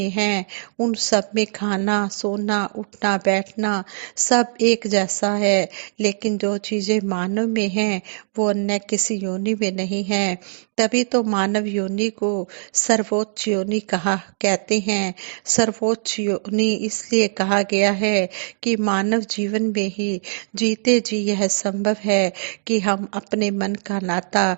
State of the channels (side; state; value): left; silent; digital silence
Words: हैं उन सब में खाना सोना उठना बैठना सब एक जैसा है, लेकिन जो चीजें मानव में हैं वो अन्य किसी योनि में नहीं है। तभी तो मानव योनि को सर्वोच्च योनि कहा कहते हैं। सर्वोच्च योनि इसलिए कहा गया है कि मानव जीवन में ही जीते जी यह संभव है कि हम अपने मन का नाता